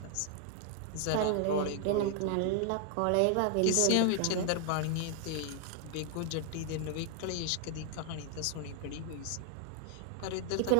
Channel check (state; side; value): different; both; correlation 0.00